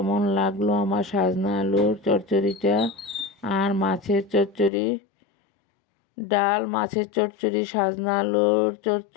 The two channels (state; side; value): drops out; right; at 4.7 s